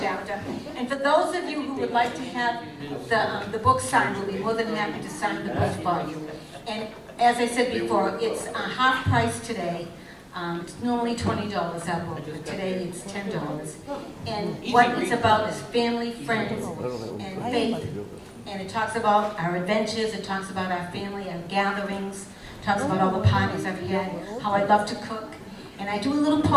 And for those of you who would like to have the book signed, we'll be more than happy to sign the book for you. And as I said before, it's half price today. It's normally $20 our book, but today it's $10. And what it's about is family, friends, and faith. And it talks about our adventures, it talks about our family, our gatherings, it talks about all the parties I've had, how I love to cook. And I do a little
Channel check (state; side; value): identical; both; correlation 1.00